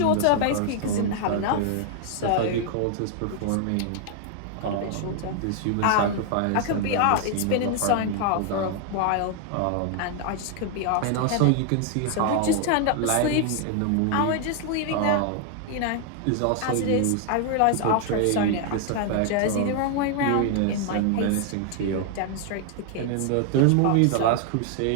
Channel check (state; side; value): different; both; correlation 0.00